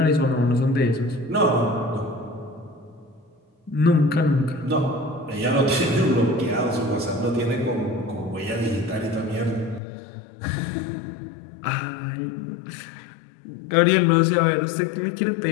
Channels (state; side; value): drops out; right; at 9.8 s